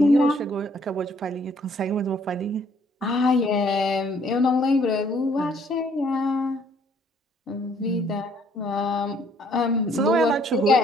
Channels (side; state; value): both; normal; correlation 0.63